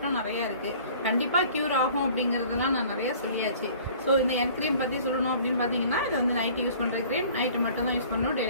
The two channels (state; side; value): inverted; both; correlation -0.50